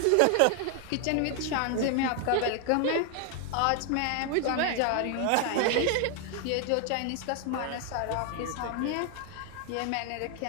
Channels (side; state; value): both; different; correlation 0.01